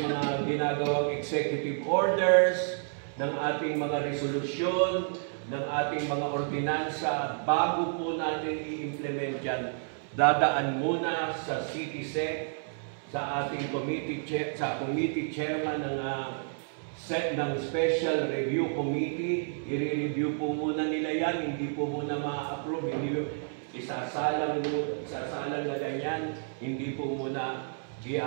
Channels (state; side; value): silent; left; 58 dB below the other